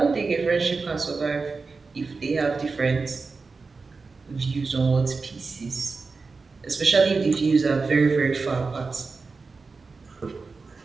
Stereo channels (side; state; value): left; quieter; 4.3 dB